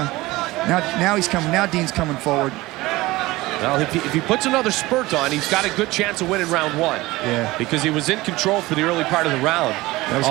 now he's coming. Now Dean's coming forward. Well, if he puts another spurt on, he's got a good chance of winning round 1. Yeah. Because he was in control for the early part of the round.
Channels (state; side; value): quieter; left; 19.7 dB